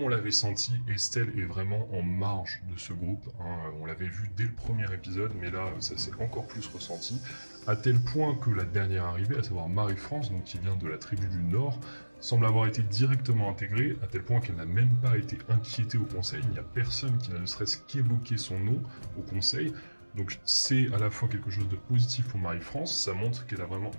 l'avait senti, Estelle est vraiment en marge de ce groupe, hein. On l'avait vu dès le premier épisode, mais là, ça s'est encore plus ressenti, à tel point que la dernière arrivée, à savoir Marie-France, donc qui vient de la tribu du Nord, semble avoir été directement intégrée, à tel point qu'elle n'a même pas été inquiétée au conseil. Il n'y a personne qui n'a ne serait-ce qu'évoqué son nom au conseil. Donc c'est à la fois quelque chose de positif pour Marie-France, ça montre qu'elle a vraiment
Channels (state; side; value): inverted; both; correlation -1.00